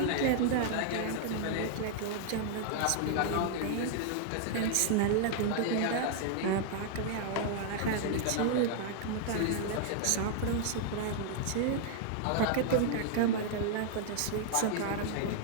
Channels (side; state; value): both; different; correlation -0.01